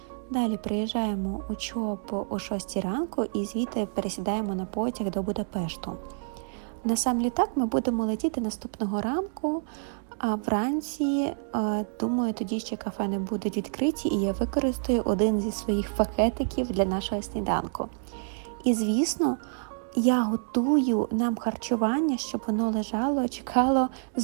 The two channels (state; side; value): silent; left; digital silence